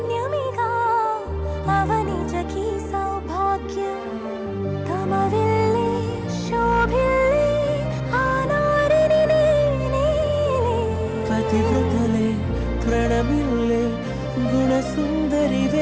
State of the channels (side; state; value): both; identical; correlation 1.00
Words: అవనిజకి సౌభాగ్యం తమ విల్లే శోభిల్లే ఆనారిని నేనే పతివ్రతలే ప్రణమిల్లే